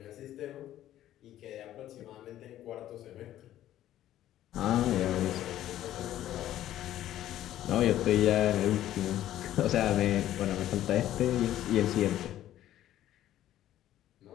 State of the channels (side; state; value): right; quieter; 12.9 dB